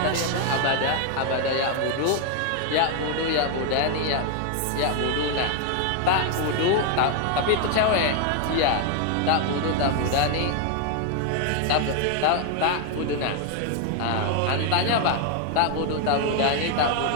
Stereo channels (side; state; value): both; different; correlation 0.00